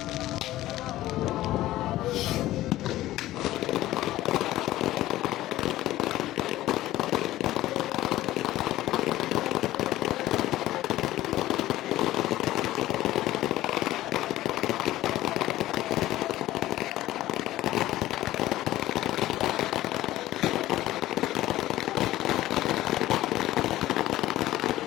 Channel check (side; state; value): right; quieter; 15.3 dB